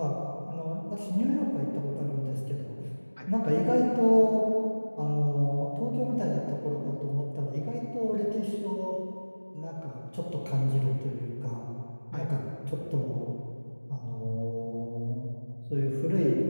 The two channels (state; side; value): inverted; both; correlation -1.00